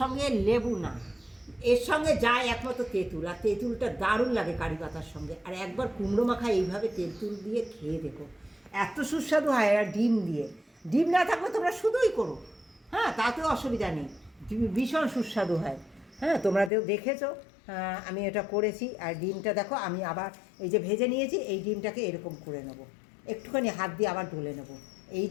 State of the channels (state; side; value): drops out; right; at 16.7 s